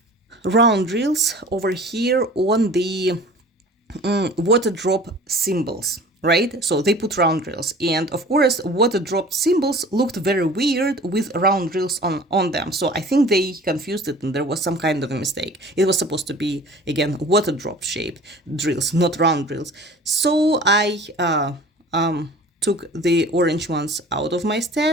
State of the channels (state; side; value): normal; both; correlation 0.44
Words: round drills over here on the water drop symbols, right? So they put round drills, and of course water dropped symbols looked very weird with round drills on them. So I think they confused it and there was some kind of a mistake. It was supposed to be, again, water drop shaped drills, not round drills. So I took the orange ones out of my